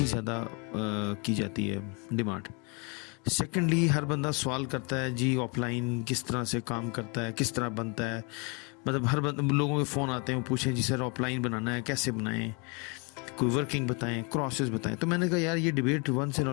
ज़्यादा की जाती है डिमांड। सेकेंडली, हर बंदा सवाल करता है जी ऑफलाइन किस तरह से काम करता है, किस तरह बनता है। मतलब हर लोगों के फ़ोन आते हैं, वो पूछें जी सर ऑफलाइन बनाना है कैसे बनाएं, कोई वर्किंग बताएं, क्रॉसेस बताएं। तो मैंने कहा यार ये debate once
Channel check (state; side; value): quieter; right; 32.6 dB